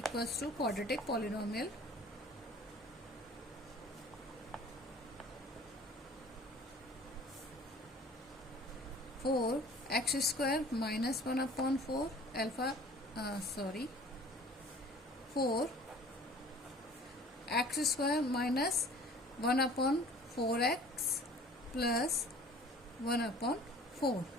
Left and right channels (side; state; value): both; normal; correlation 0.48